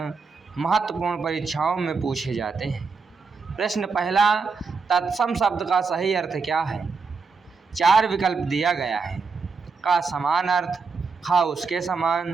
महत्वपूर्ण परीक्षाओं में पूछे जाते हैं। प्रश्न पहला, तत्सम शब्द का सही अर्थ क्या है? 4 विकल्प दिया गया है। का समान अर्थ, खा उसके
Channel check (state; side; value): quieter; left; 4.8 dB